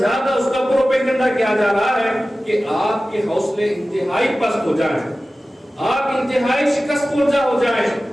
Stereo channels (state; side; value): normal; both; correlation 0.96